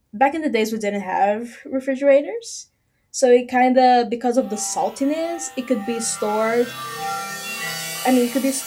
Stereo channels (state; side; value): identical; both; correlation 1.00